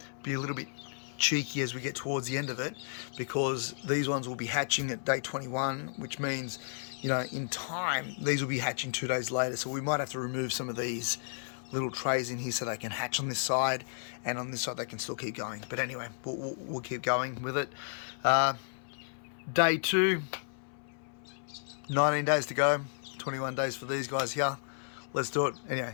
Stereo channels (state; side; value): silent; right; 56 dB below the other